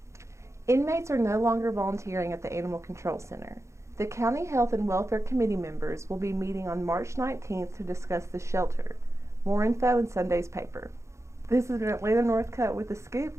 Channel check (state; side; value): late; left; 0.14 ms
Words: Inmates are no longer volunteering at the Animal Control Center. The County Health and Welfare Committee members will be meeting on March 19th to discuss the shelter. More info in Sunday's paper. This has been Atlanta Northcutt with The